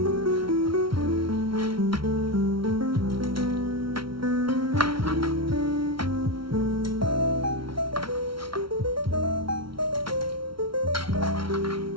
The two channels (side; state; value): left; late; 0.74 ms